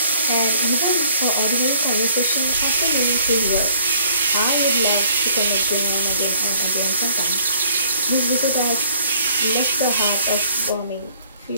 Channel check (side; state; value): both; inverted; correlation -0.59